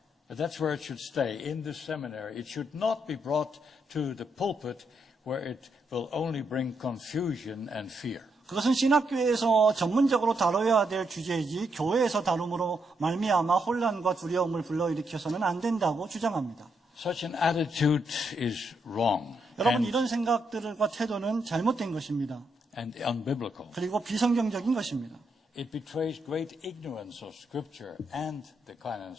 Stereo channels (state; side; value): normal; both; correlation 0.79